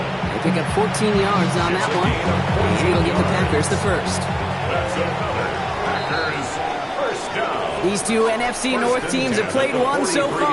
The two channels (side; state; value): both; identical; correlation 1.00